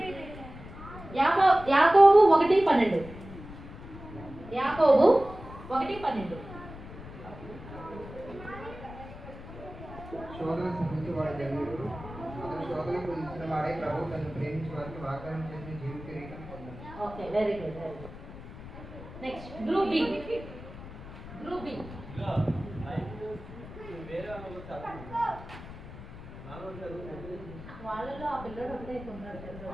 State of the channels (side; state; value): left; noise; rumble, 14 dB below the sound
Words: యాకోబు 1:12. యాకోబు 1:12. శోధన సహించి వాడి ధన్యుడు, అతను శోధనకు ఇచ్చిన వాడే ప్రభు తను ప్రేమించి వారికి వాగ్దానం చేసిన జీవ కిరీటం పొందాడు. Okay, very good. Next group B. వాళ్ళలో ఆ పిల్లడు ఒకటే ఉన్నాడు.